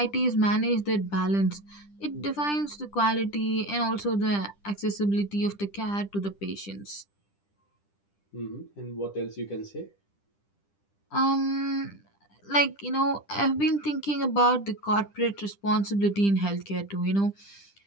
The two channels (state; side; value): late; right; 10 ms